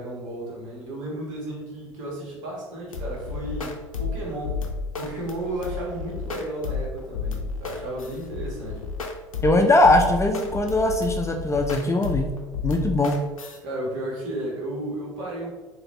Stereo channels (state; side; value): normal; both; correlation 0.56